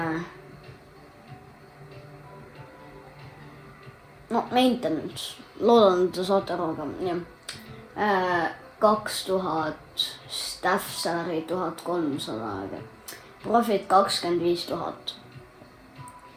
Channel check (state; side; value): identical; both; correlation 1.00